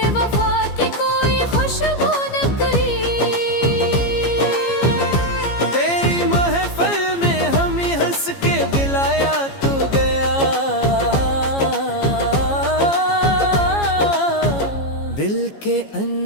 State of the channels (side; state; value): right; late; 15 ms